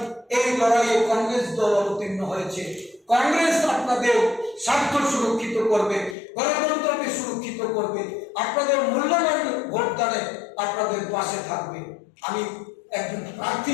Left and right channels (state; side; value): drops out; right; at 6.2 s